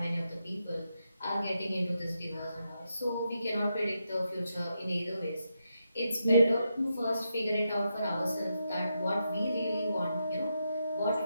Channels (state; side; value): inverted; both; correlation -0.83